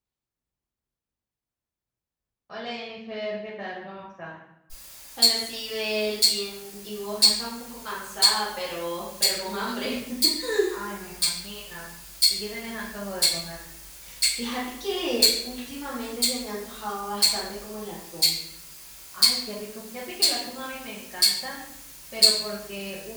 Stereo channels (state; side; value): identical; both; correlation 1.00